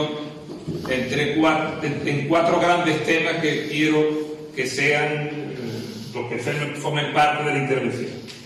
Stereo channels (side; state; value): both; identical; correlation 1.00